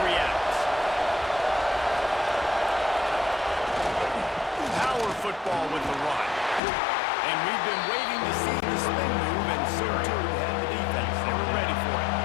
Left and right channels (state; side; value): drops out; right; at 6.6 s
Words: reacts. Power football with the run. And we've been waiting to see the spin move, and so too had the defense. They were ready for it.